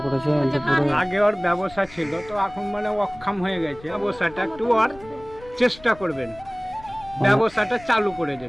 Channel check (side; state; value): left; noise; rumble, 22 dB below the sound